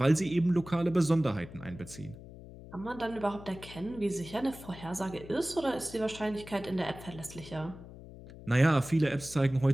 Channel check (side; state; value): left; noise; hum, 16 dB below the sound